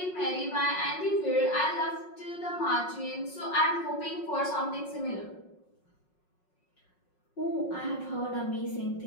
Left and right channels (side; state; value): right; late; 5.5 ms